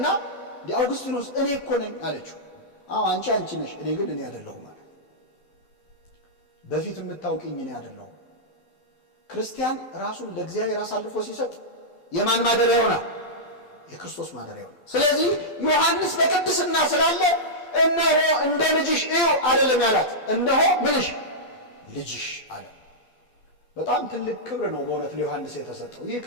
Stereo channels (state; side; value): late; right; 12 ms